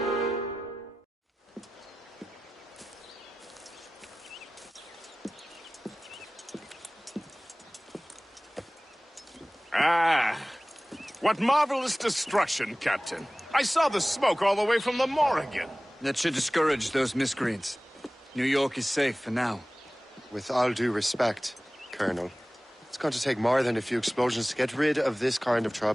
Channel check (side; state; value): both; normal; correlation 0.98